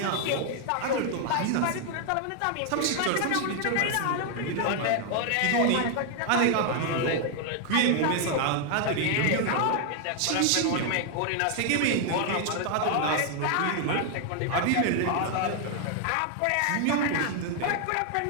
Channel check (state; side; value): different; both; correlation 0.00